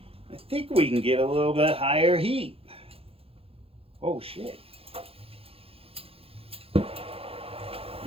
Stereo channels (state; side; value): late; left; 0.28 ms